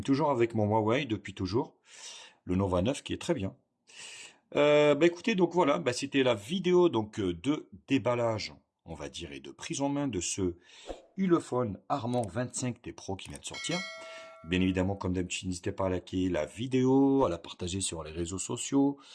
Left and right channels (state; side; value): identical; both; correlation 1.00